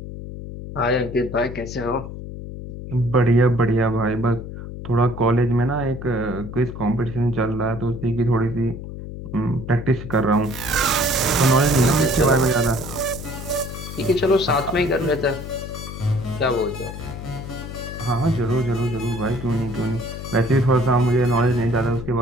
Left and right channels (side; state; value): left; noise; hum, 10 dB below the sound